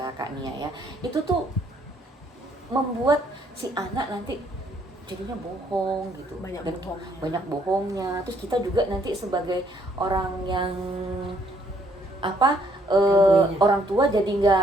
Kak Nia ya, itu tuh membuat si anak nanti jadinya bohong gitu. Banyak Dan bohongnya. banyak bohongnya. Terus kita juga nanti sebagai orang yang apa orang tua jadi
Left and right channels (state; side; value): normal; both; correlation 0.66